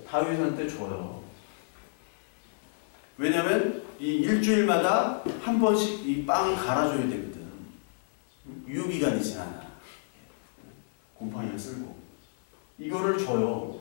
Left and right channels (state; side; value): silent; right; 55 dB below the other